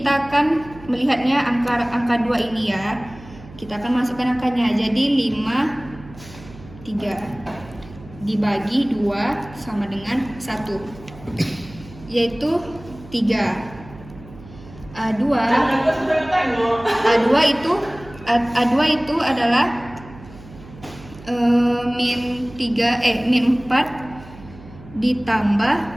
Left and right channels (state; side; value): noise; right; hum, 19 dB below the sound